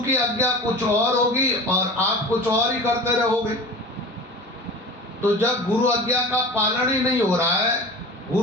आज्ञा कुछ और होगी और आप कुछ और ही करते रहोगे। तो जब गुरु आज्ञा का पालन ही नहीं हो रहा है,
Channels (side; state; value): both; normal; correlation 0.36